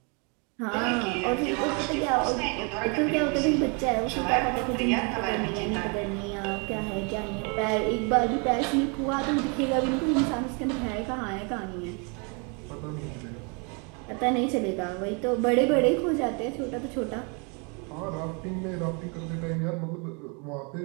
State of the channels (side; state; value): left; quieter; 34.1 dB